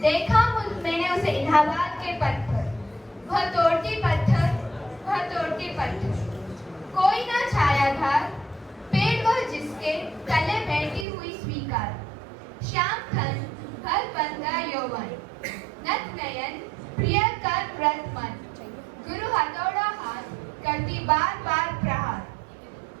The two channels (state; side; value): drops out; left; at 11.1 s